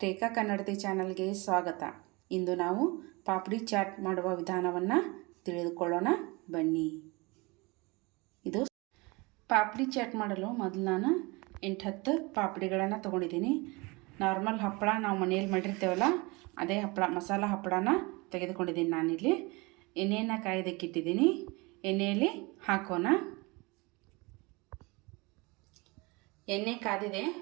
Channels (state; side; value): quieter; left; 25.8 dB